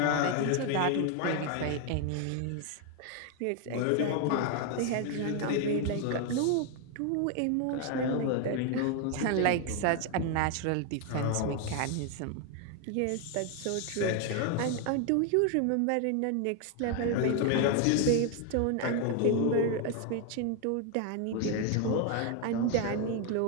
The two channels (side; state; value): both; different; correlation 0.01